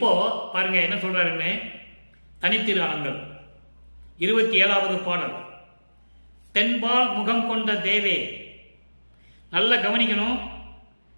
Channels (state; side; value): inverted; both; correlation -1.00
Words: பாருங்க என்ன சொல்றாருன்னு, தனித்திருநாமங்கள் 27வது பாடல். தென்பால் முகம் கொண்ட தேவே. நல்ல கவனிக்கணும்.